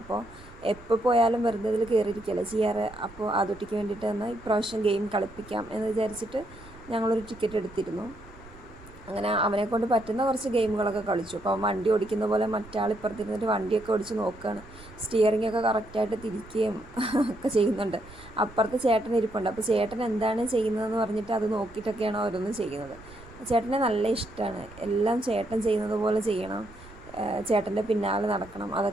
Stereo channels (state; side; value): noise; right; rumble, 20 dB below the sound